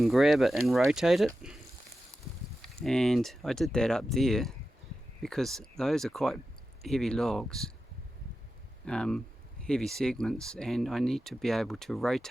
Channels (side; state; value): both; normal; correlation 0.92